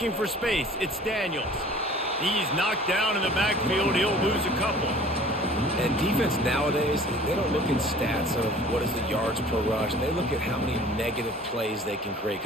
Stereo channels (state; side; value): normal; both; correlation 0.48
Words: for space, it's Daniels. He's knocked down in the backfield. He'll lose a couple. And defense nowadays, they don't look in stats of what is the yards per rush. They look at how many negative plays they can create.